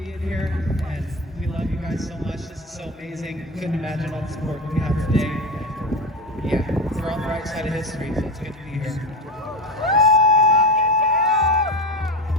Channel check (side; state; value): both; normal; correlation 0.21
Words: here, and we love you guys so much. This is so amazing. Couldn't imagine all the support we have today. Yeah, we're on the right side of history, so it's good to be here.